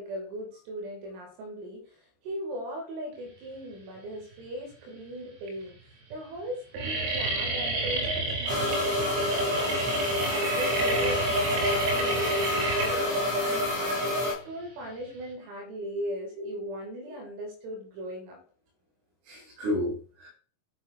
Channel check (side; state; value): left; late; 22 ms